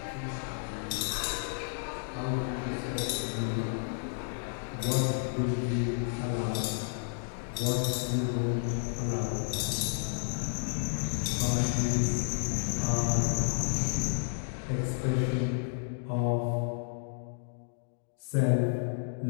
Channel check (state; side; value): silent; right; digital silence